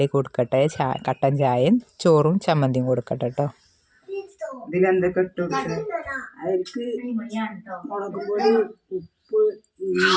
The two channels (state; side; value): identical; both; correlation 1.00